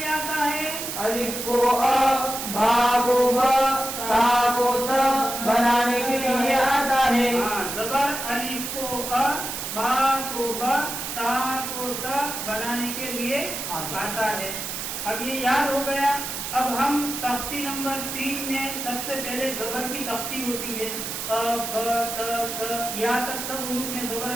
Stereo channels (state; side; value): noise; right; hiss, 5 dB below the sound